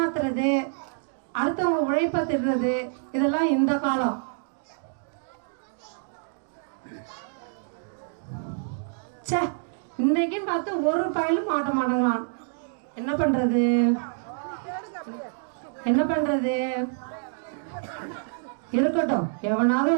அடுத்தவங்க உழைப்பை திடுறது, இதெல்லாம் இந்த காலம். சே, இன்னைக்குன்னு பார்த்து ஒரு பயலும் மாட்ட மாட்டேங்கிறான். என்ன பண்றது? இருக்கட்டும், எவனாவது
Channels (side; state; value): left; silent; digital silence